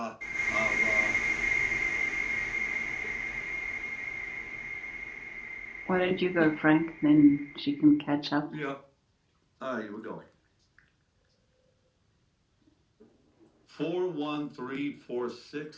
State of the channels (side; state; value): both; identical; correlation 1.00